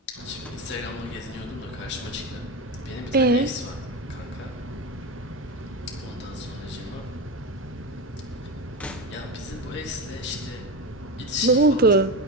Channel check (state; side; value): normal; both; correlation 0.19